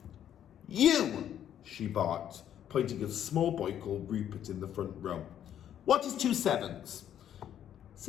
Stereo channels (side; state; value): right; quieter; 10.2 dB